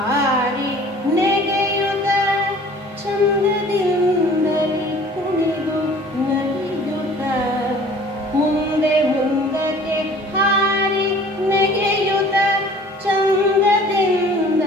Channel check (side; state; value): both; normal; correlation 0.49